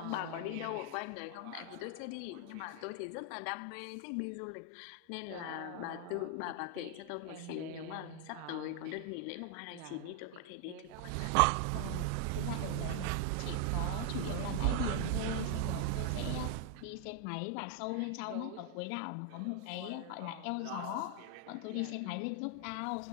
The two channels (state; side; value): different; both; correlation 0.00